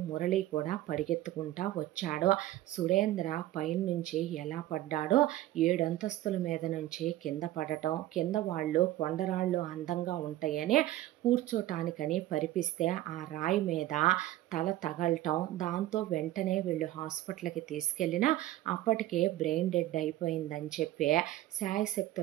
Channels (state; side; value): quieter; left; 14.9 dB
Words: మురళి కూడా పరిగెత్తుకుంటా వచ్చాడు. సురేంద్ర పైనుంచి ఎలా పడ్డాడో 7 అంతస్తుల మీద నుంచి కింద పడటం, కింద వాళ్ళు కొండరాళ్ళు అందంగా ఉంటాయని కూర్చోటానికని పరిపిస్తే ఆ రాయి మీద తల తగలటం, దాంతో వెంటనే వీళ్ళు హాస్పిటల్కి తీసుకెళ్ళినా అప్పటికే బ్రెయిన్ డెడ్ అయిపోయిందని చెప్పి